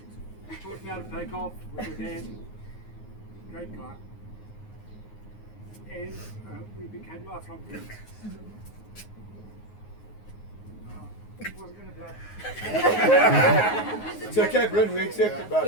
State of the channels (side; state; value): right; late; 9.5 ms